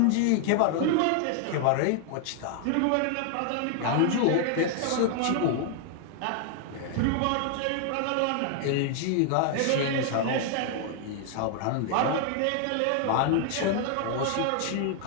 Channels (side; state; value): both; different; correlation 0.00